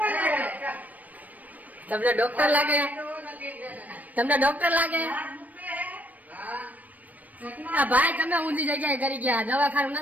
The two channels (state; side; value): late; left; 0.077 ms